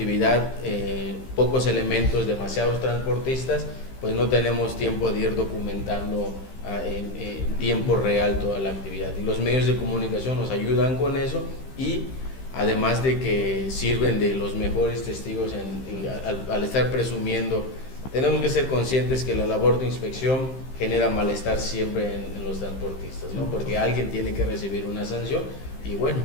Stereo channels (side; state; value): right; late; 15 ms